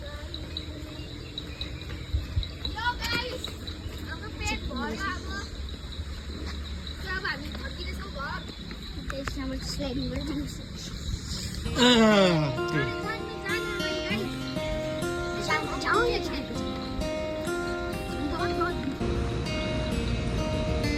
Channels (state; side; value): identical; both; correlation 1.00